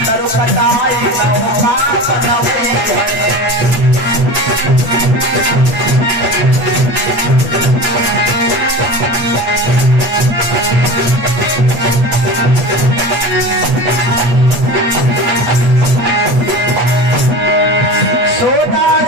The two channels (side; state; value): left; late; 8.2 ms